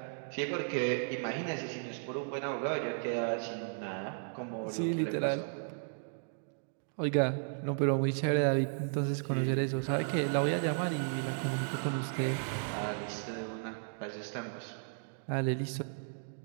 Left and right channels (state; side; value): silent; left; digital silence